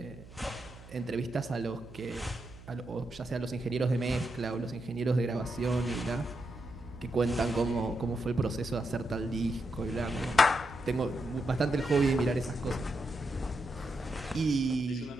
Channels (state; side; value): noise; right; hum, 18 dB below the sound